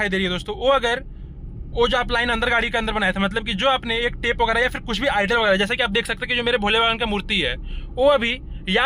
दे रही है दोस्तों, वो जो आप लाइन अंदर गाड़ी के अंदर बनाया था, मतलब कि जो आपने एक टेप वगैरह या फिर कुछ भी आइडल वगैरह, जैसे कि आप देख सकते हैं कि जो मेरे भोले बाबा की मूर्ति है, वो अभी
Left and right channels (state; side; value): identical; both; correlation 1.00